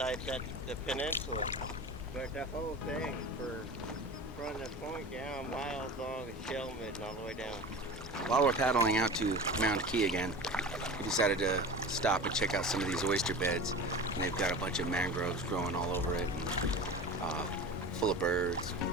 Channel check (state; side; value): normal; both; correlation 0.33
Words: at the peninsula, but the whole thing from the point down miles long is shell mid and all the way down. While we're paddling out to Mound Key again, we decided to stop and check out some of these oyster beds. And they've got a bunch of mangroves growing all over it, and full of birds.